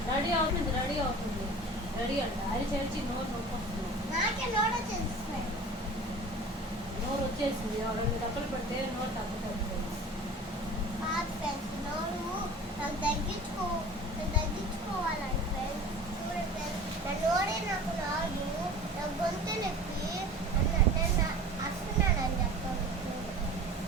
రెడీ అవుతుంది రెడీ అంట అది చేసి నోరు వచ్చేసింది. రెండు డబ్బులు పెడితే నోరు తగ్గుతుంది.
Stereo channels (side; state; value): both; normal; correlation 0.40